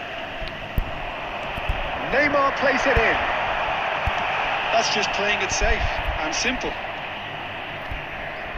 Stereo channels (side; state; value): both; identical; correlation 1.00